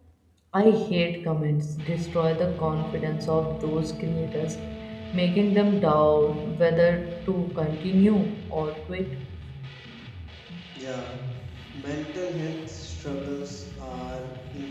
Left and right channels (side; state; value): both; identical; correlation 1.00